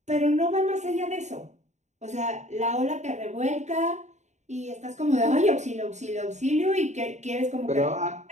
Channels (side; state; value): left; late; 0.34 ms